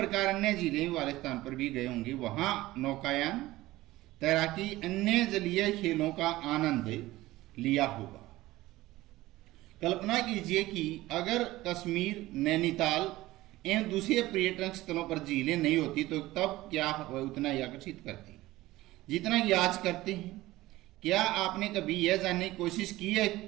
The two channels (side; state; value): left; quieter; 17.6 dB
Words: अन्य झीलें वाले स्थान पर भी गए होंगे, वहां नौकायान, तैराकी, अन्य जलीय खेलों का आनंद लिया होगा। कल्पना कीजिए कि अगर कश्मीर, नैनीताल एवं दूसरे पर्यटन स्थलों पर झीलें नहीं होती तो तब क्या वह उतना ही आकर्षित करती जितना कि आज करते हैं। क्या आपने कभी यह जानने की कोशिश की है